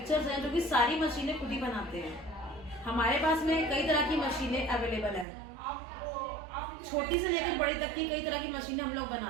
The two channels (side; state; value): left; drops out; at 5.2 s